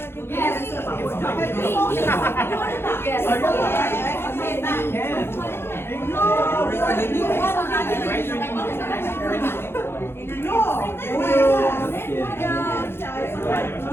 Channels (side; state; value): right; late; 0.11 ms